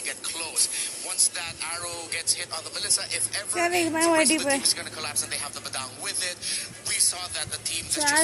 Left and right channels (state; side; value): identical; both; correlation 1.00